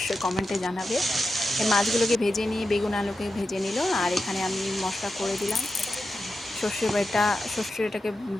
কমেন্টে জানাবে। এই মাছগুলোকে ভেজে নিয়ে বেগুন আলুকে ভেজে নিল, আর এখানে আমি মশলা করে দিলাম, সর্ষেটাকে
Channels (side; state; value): both; normal; correlation 0.90